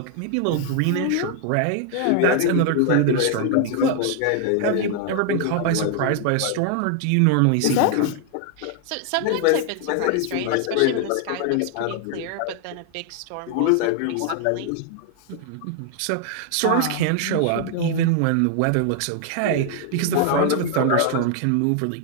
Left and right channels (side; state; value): both; different; correlation 0.00